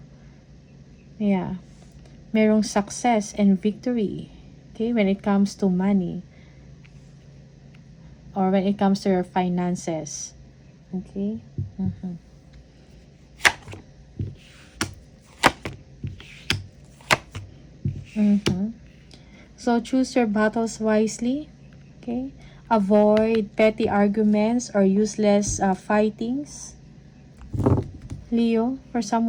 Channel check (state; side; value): identical; both; correlation 1.00